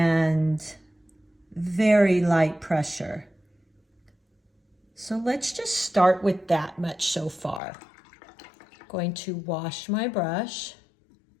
very light pressure. So let's just start with that much so far. Going to wash my brush,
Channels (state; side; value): drops out; right; at 7.6 s